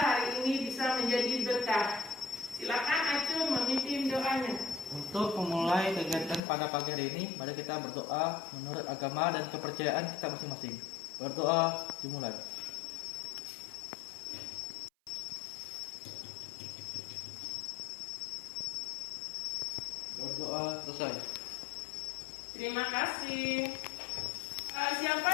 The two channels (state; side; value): drops out; right; at 6.4 s